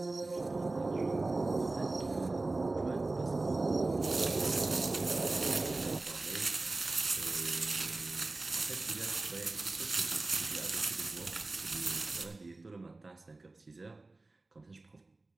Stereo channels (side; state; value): left; quieter; 3.2 dB